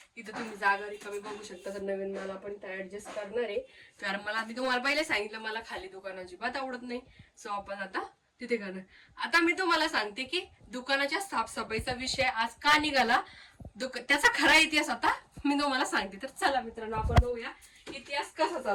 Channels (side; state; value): both; identical; correlation 1.00